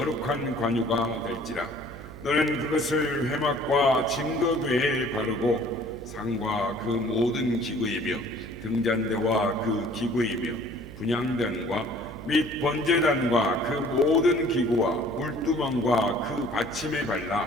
관유가 될지라. 너는 그것을 회막과 증거궤에 바르고 상과 그 모든 기구이며 등잔대와 그 기구이며 분향단과 및 번제단과 그 모든 기구와 물두멍과 그 받침에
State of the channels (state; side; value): noise; right; hum, 14 dB below the sound